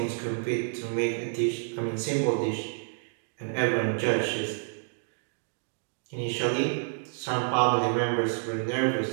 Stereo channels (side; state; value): left; silent; 59 dB below the other